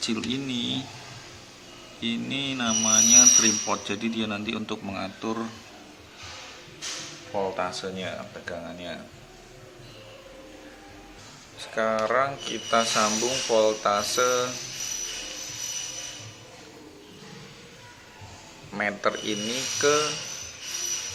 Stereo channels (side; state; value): both; identical; correlation 1.00